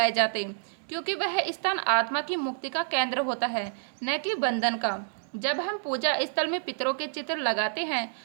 जाते, क्योंकि वह स्थान आत्मा की मुक्ति का केंद्र होता है, न कि बंधन का। जब हम पूजा स्थल में पितरों के चित्र लगाते हैं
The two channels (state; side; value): silent; left; digital silence